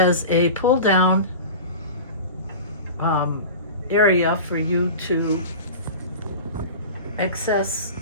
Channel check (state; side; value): inverted; both; correlation -0.33